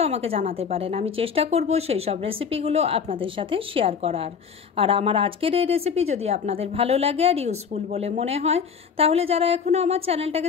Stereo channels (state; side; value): quieter; right; 6.6 dB